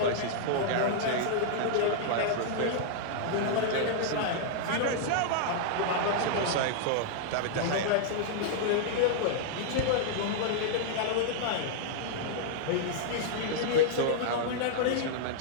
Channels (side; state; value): both; different; correlation -0.01